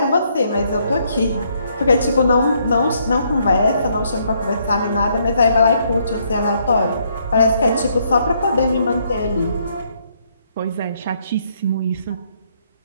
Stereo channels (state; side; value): inverted; both; correlation -0.71